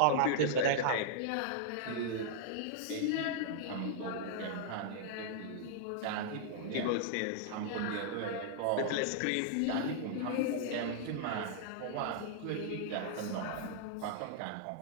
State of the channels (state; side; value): different; both; correlation -0.01